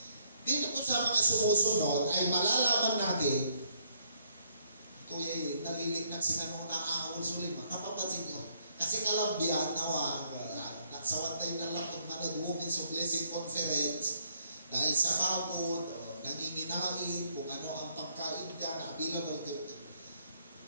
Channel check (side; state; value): both; inverted; correlation -0.69